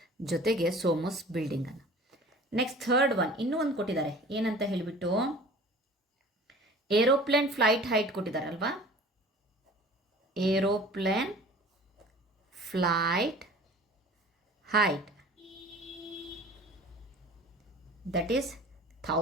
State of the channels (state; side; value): normal; both; correlation 0.44